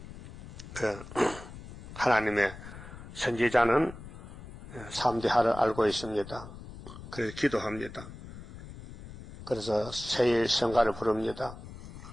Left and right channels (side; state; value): left; noise; rumble, 14 dB below the sound